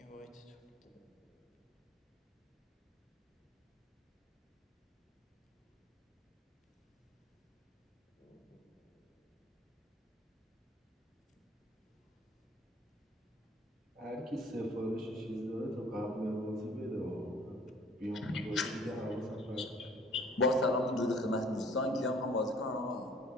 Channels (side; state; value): both; normal; correlation 0.55